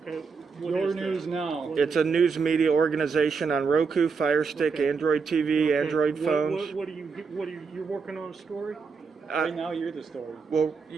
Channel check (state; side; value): quieter; left; 5.2 dB